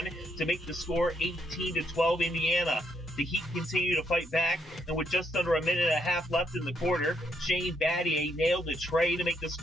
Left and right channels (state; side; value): normal; both; correlation 0.75